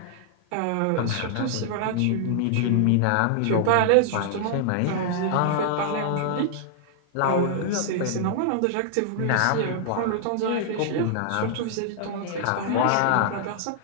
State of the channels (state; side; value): different; both; correlation -0.01